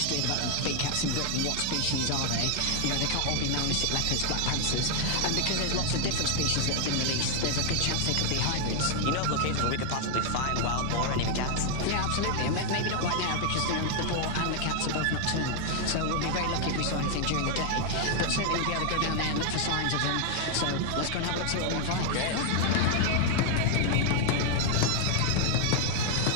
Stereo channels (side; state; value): both; different; correlation 0.00